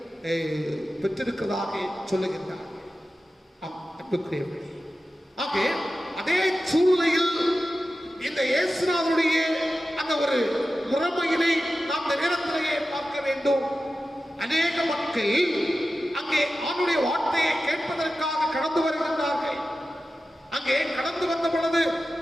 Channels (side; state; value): both; normal; correlation 0.94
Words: பெற்றிருக்கிறதாக சொல்லுகின்றார். ஆக அதே சூழ்நிலையில் இந்த இயேசுநாதருடைய அந்த ஒரு முறைமையினை நாம் இந்த நேரத்திலேயே பார்க்க வேண்டும். அநேக மக்கள் அங்கே ஆண்டுடைய வார்த்தையை கேட்பதற்காக கடந்து வருகின்றார்கள். அங்கே கடந்து வந்த பொழுது